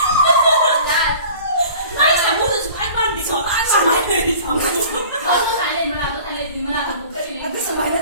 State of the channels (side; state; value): both; inverted; correlation -0.45